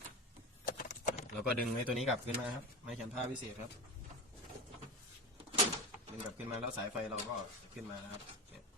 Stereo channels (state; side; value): normal; both; correlation 0.26